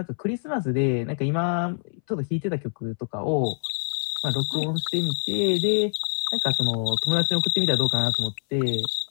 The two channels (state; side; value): silent; right; 62 dB below the other